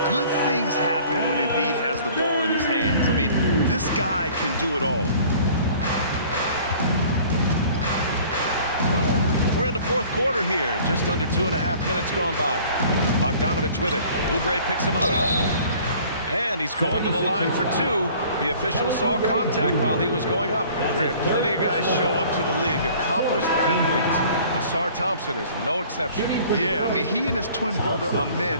good things happen when Embiid has the ball in his hands. I mean, this guy can do it all. We're in the fourth quarter here. Just under 2.5 minutes gone by. Bogdanovich with it. Oubre picks him up. And he's going to the line for two. The official saw contact while he was going up. Grant, plenty of guys show up to the league, accomplished athletes. Asar Thompson is no exception. Yeah, I mean, he and his twin brother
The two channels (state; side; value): inverted; both; correlation -0.50